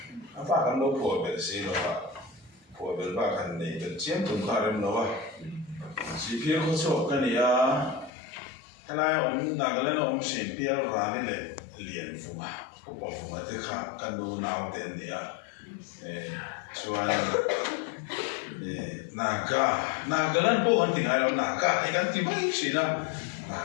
anh phải cần đâu phổ biến gì đó phổ biến ba cái này cái chiếm cũng khá là nhiều chỉ biết có số cái này thế này ông nào cái này ông xin biết ra này liền phụ mà cũng bảo phụ mà thì khác cần đâu nào tiền này cho anh naga lan po ang tingalaw naga ay kan tibay sina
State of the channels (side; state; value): right; drops out; at 8.1 s